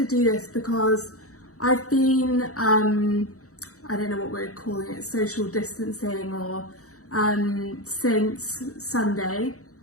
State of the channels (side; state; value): right; late; 0.65 ms